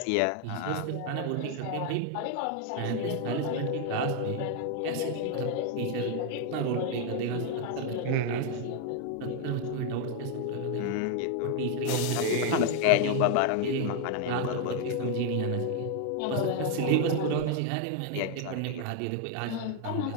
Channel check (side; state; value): both; different; correlation 0.00